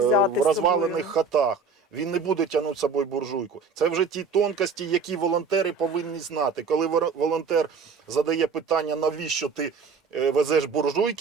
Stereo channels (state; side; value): quieter; left; 4.8 dB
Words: в з розвалених собою. хатах. Він не буде тягнути з собою буржуйку. Це вже ті тонкості, які волонтери повинні знати. Коли волонтер задає питання, навіщо ти везеш